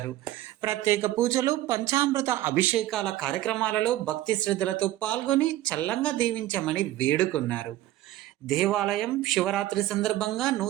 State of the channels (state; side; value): quieter; left; 14.7 dB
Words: ప్రత్యేక పూజలు, పంచామృత అభిషేకాల కార్యక్రమాలలో భక్తి శ్రద్ధలతో పాల్గొని చల్లంగా దీవించమని వేడుకున్నారు. దేవాలయం శివరాత్రి సందర్భంగా